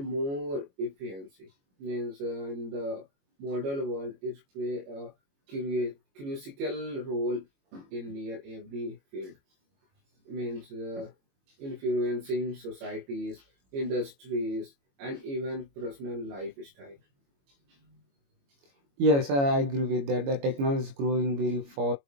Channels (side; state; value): left; late; 22 ms